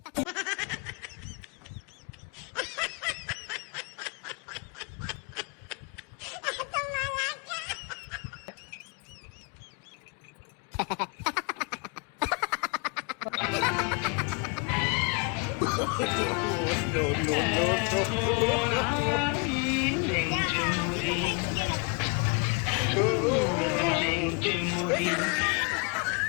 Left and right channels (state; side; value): quieter; right; 33.5 dB